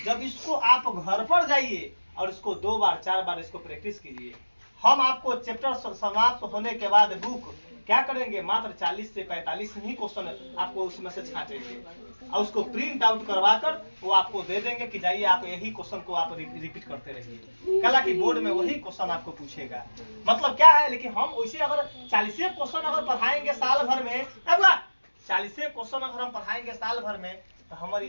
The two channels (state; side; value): inverted; both; correlation -1.00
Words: जब इसको आप घर पर जाइए और इसको 2 बार 4 बार इसको प्रैक्टिस कीजिए। हम आपको चैप्टर समाप्त होने के बाद बुक क्या करेंगे, मात्र 40 से 45 ही क्वेश्चन आपको उसमें से छांटेंगे और उसको प्रिंट आउट करवा कर वो आपको दे देंगे कि जाइए आप यही क्वेश्चन को आप रिपीट करते रहिए। कल की बोर्ड में वही क्वेश्चन आपको पूछेगा। मतलब क्या है, लेकिन हम वैसे अगर 40 क्वेश्चन अगर पढ़ाएंगे साल भर में, 40 क्वेश्चन अगर हम पढ़ाएंगे साल भर में तो हमारी